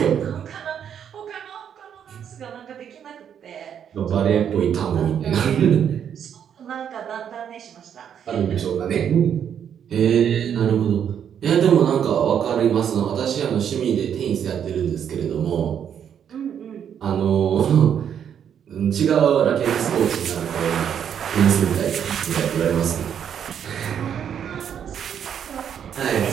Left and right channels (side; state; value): left; quieter; 8.6 dB